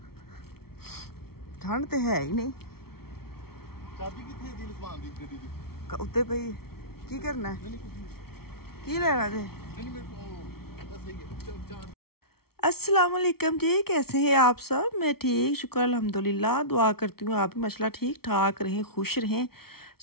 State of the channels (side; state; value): right; late; 0.94 ms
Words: ठंड तो है ही नहीं। चाबी किथे दी लुकवान दी गड्डी दी? उत्ते पई की करना है? की लेना थे? नहीं मेरे को बस सही है। अस्सलाम वालेकुम जी, कैसे हैं आप सब? मैं ठीक, शुक्र अल्हम्दुलिल्लाह। दुआ करती हूँ आप भी माशाल्लाह ठीक ठाक रहें, खुश रहें।